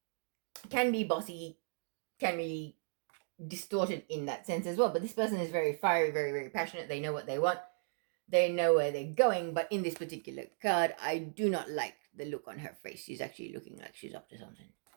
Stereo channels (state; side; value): silent; left; digital silence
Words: can be bossy, can be distorted in that sense as well, but this person is very fiery, very, very passionate. They know what they want, they know where they're going, but in this particular card, I do not like the look on her face. She's actually looking like she's up to something.